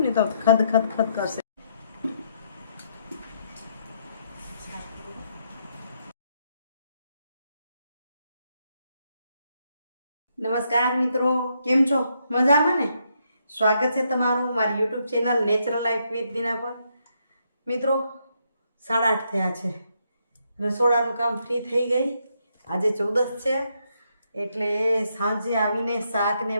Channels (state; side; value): inverted; both; correlation -0.77